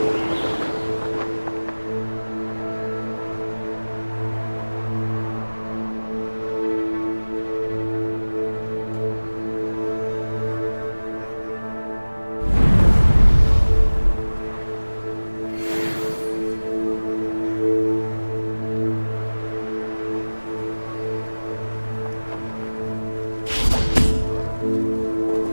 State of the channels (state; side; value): inverted; both; correlation -1.00